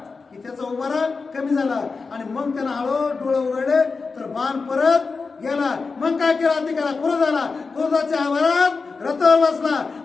की त्याचा उभारा कमी झाला आणि मग त्यानं हळू डोळे उघडले तर बाण परत गेला. मग काय केलं? अतिकायाला क्रोध आला. क्रोधाच्या आवारात रथावर बसला,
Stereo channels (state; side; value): quieter; right; 4.4 dB